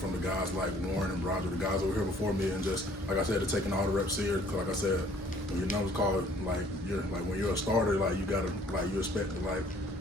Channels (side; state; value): both; normal; correlation 0.58